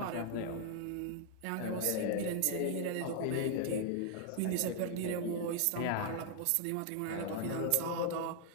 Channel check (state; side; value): different; both; correlation 0.00